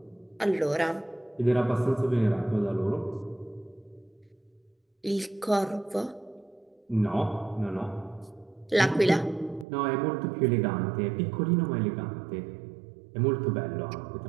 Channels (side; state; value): left; drops out; at 9.7 s